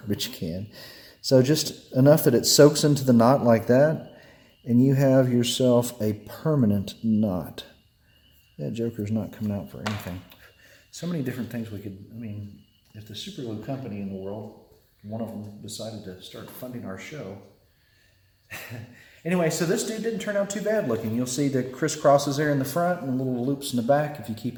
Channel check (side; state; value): both; identical; correlation 1.00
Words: can. So just enough that it soaks into the knot like that, and you have yourself a permanent knot. That joker's not coming out for anything. So many different things we could, I mean, if the super glue company in the world, one of them decided to start funding our show. Anyway, so this dude didn't turn out too bad looking. You'll see the crisscrosses there in the front and little loops in the back. If you